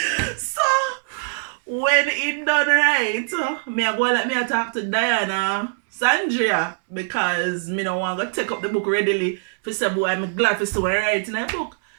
So when he done right, me I go like me I talk to Diana, Sandria, because me no want to take up the book readily for say boy I'm glad for see what I write in that book.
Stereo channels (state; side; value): silent; left; 64 dB below the other